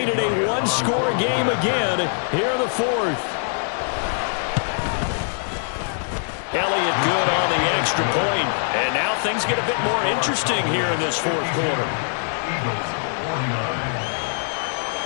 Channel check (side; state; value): right; silent; digital silence